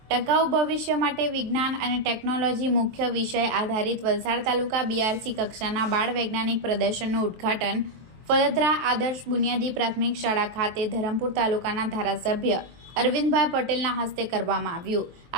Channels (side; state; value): left; late; 23 ms